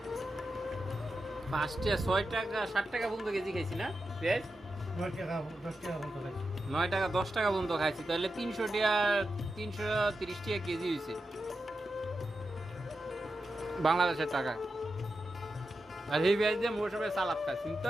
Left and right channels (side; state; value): both; normal; correlation 0.90